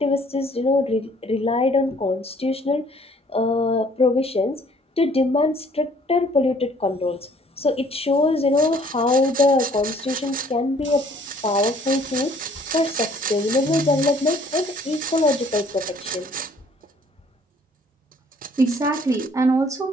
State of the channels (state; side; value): normal; both; correlation 0.59